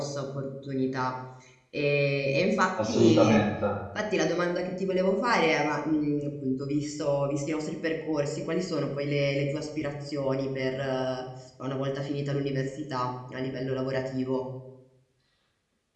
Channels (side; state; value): both; identical; correlation 1.00